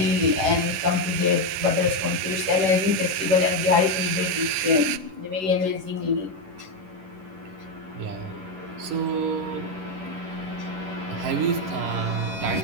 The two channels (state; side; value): late; left; 11 ms